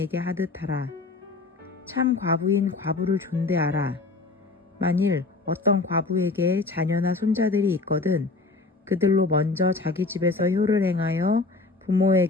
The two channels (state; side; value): quieter; right; 3.6 dB